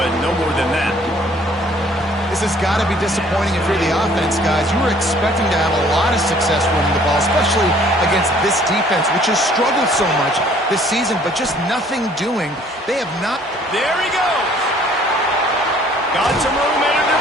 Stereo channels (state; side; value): normal; both; correlation 0.58